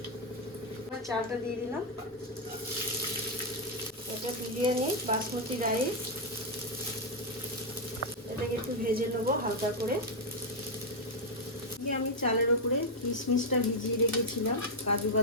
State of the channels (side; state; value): both; normal; correlation 0.01